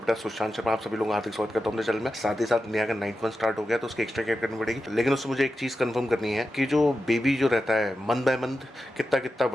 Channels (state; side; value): normal; both; correlation 0.91